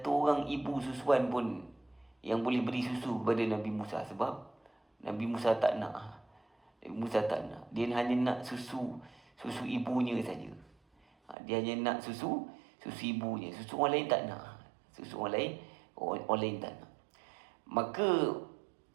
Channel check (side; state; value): left; drops out; at 11.4 s